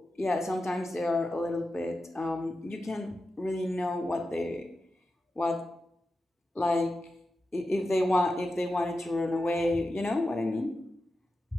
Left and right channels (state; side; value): normal; both; correlation 0.91